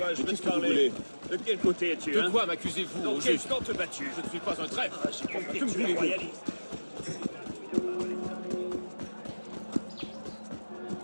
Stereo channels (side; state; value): both; inverted; correlation -1.00